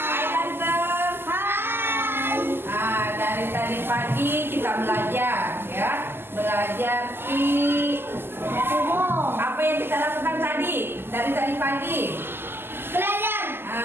ganteng. Dari tadi pagi kita belajar, ya. Belajar apa yang kita lakukan tadi? Dari tadi pagi.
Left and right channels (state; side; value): late; left; 0.11 ms